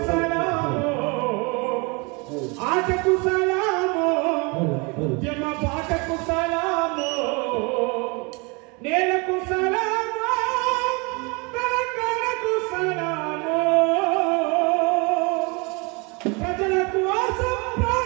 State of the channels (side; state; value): left; quieter; 29.6 dB